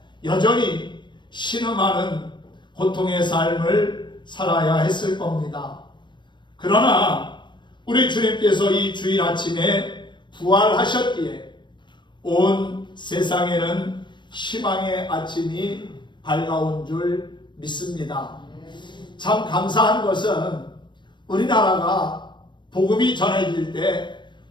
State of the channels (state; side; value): late; right; 0.22 ms